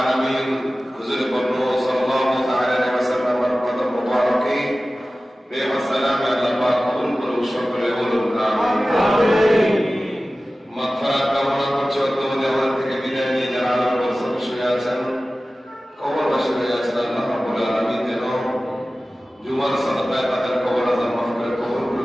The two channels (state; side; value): normal; both; correlation 0.96